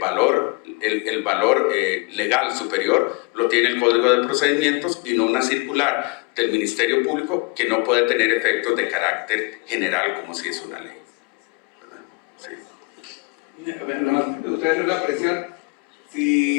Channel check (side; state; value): right; quieter; 30.2 dB